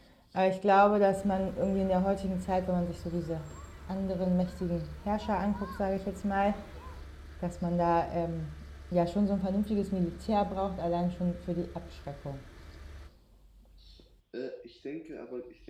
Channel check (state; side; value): identical; both; correlation 1.00